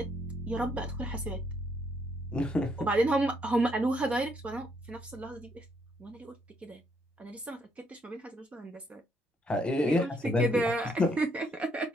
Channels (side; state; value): both; normal; correlation 0.72